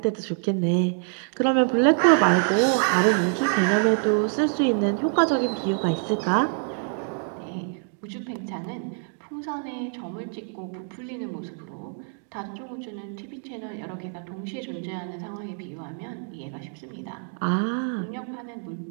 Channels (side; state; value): left; silent; 58 dB below the other